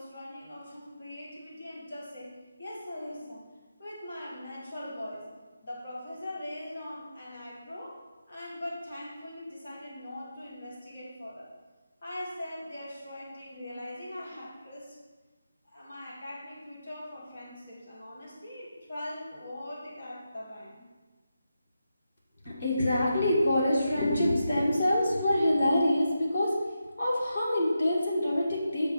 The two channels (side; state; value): both; inverted; correlation -0.87